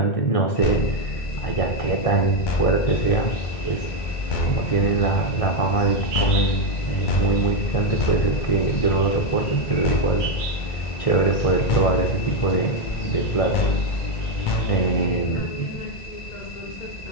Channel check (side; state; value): right; late; 1.6 ms